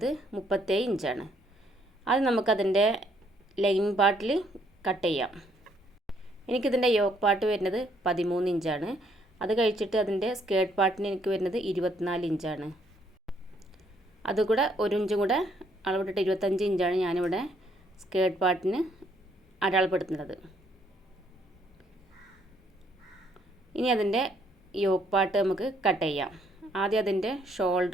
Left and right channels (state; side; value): normal; both; correlation 0.68